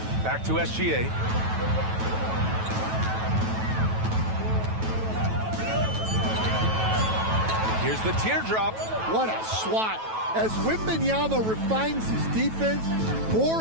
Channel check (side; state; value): left; late; 9.2 ms